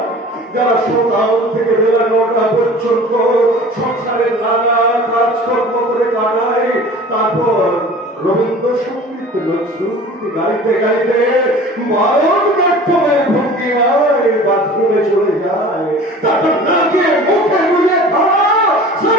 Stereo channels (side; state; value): both; normal; correlation 0.42